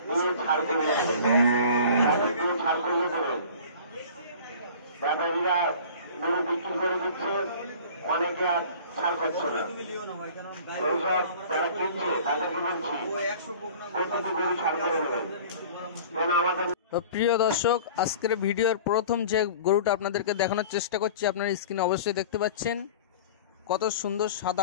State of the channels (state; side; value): inverted; both; correlation -0.42